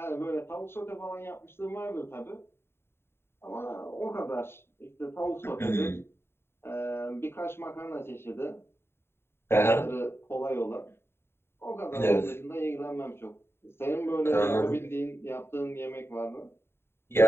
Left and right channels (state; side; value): late; right; 0.11 ms